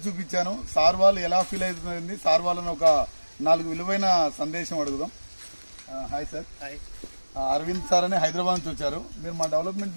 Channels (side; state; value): both; inverted; correlation -1.00